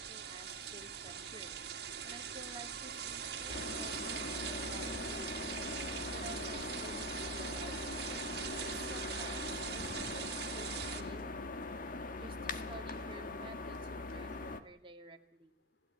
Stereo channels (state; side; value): normal; both; correlation 0.12